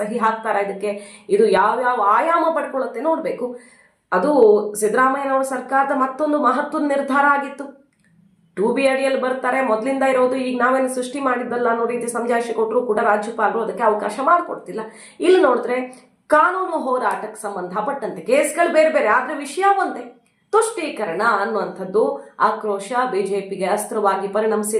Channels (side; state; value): both; identical; correlation 1.00